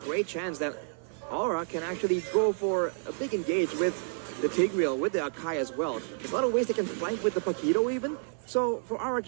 chance that Aura can actually go for a big engage with the Tigreal, with the Akai as well. There's a lot of ways they can flank with the Paquito even. So for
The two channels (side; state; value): left; silent; 58 dB below the other